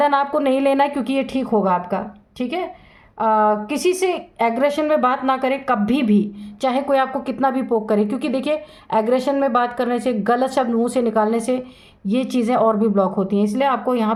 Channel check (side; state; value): both; identical; correlation 1.00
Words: आपको नहीं लेना है, क्योंकि ये ठीक होगा आपका, ठीक है। किसी से एग्रेशन में बात ना करें कभी भी, चाहे कोई आपको कितना भी पोक करे, क्योंकि देखिए एग्रेशन में बात करने से, गलत शब्द मुंह से निकालने से ये चीज़ें और भी ब्लॉक होती हैं। इसलिए आपको यहाँ